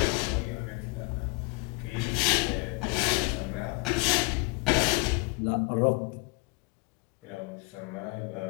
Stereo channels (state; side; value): quieter; right; 28.1 dB